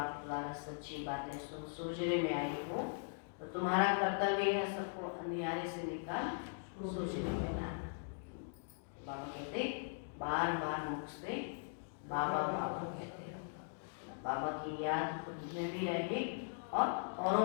द्वारा सच्ची बातें सुन सोचने में आए हो तो तुम्हारा कर्तव्य है सबको अंधियारे से निकाल सोचने में लाना। बाबा कहते बार बार मुख से बाबा बाबा कहते रहो। बाबा की याद खुद में भी रहे और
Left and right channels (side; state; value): right; silent; digital silence